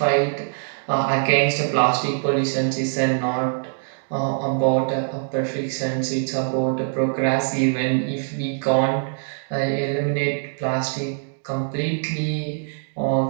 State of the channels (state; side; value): silent; left; digital silence